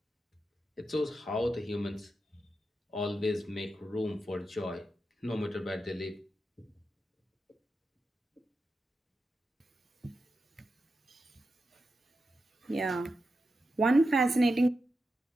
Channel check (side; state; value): both; normal; correlation 0.89